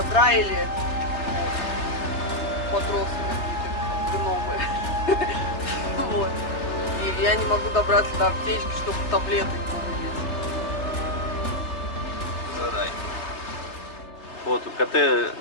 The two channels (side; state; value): right; late; 3.5 ms